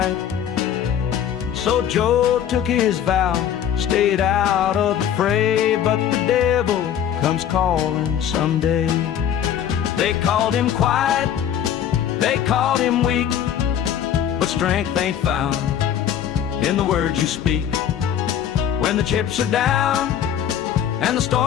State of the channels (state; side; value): quieter; right; 9.6 dB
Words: So Joe took his vow, stayed out of the fray, but the devil comes calling someday. They called him quiet, they called him weak, but strength ain't found in the words you speak. When the chips are down and the